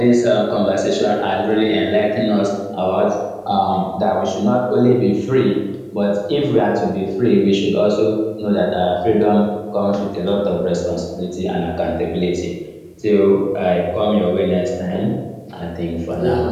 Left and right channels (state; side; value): identical; both; correlation 1.00